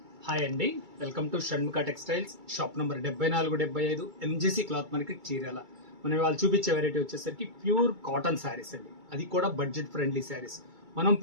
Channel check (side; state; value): left; late; 2.3 ms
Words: Hi అండి, welcome to Shanmukha textiles. Shop number 7475 MGC cloth market Chirala. మనం వాళ్ళు చూపించే వెరైటీ వచ్చేసరికి ప్యూర్ కాటన్ శారీస్ అండి, అది కూడా బడ్జెట్ ఫ్రెండ్లీ శారీస్. మనం